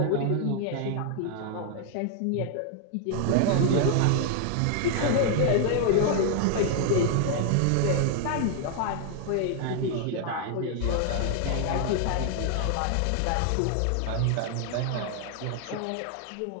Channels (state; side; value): different; both; correlation 0.00